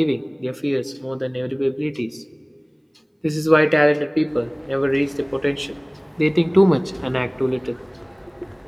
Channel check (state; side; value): identical; both; correlation 1.00